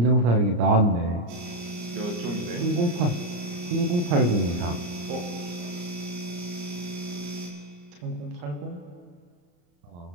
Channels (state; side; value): late; left; 34 ms